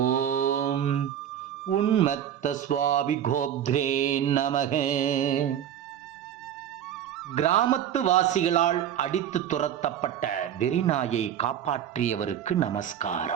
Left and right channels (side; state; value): left; quieter; 10.1 dB